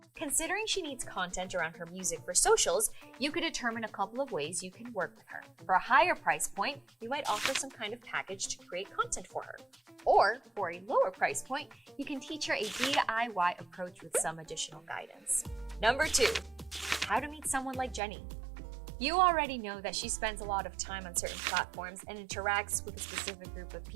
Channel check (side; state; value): left; drops out; at 18.0 s